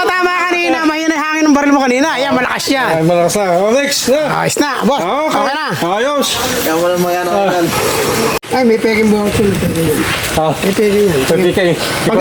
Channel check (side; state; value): both; identical; correlation 1.00